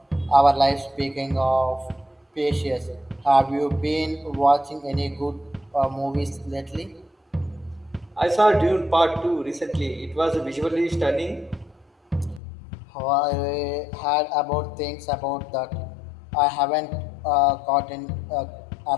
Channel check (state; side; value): drops out; right; at 12.4 s